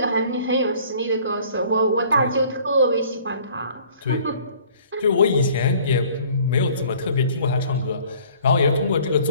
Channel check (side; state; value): both; inverted; correlation -0.54